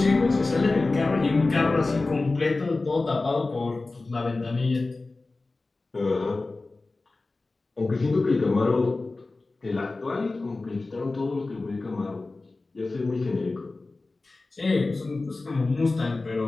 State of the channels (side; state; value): right; quieter; 3.4 dB